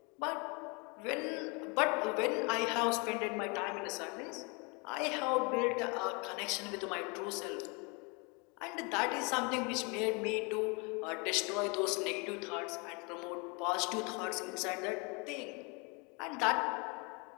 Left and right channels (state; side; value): quieter; right; 30.7 dB